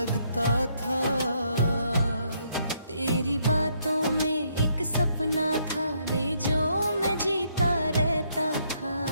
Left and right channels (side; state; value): both; inverted; correlation -0.72